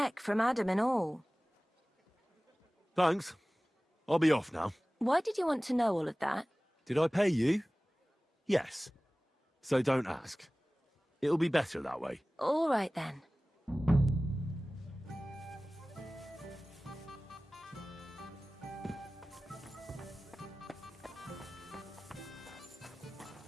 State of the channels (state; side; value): normal; both; correlation 0.98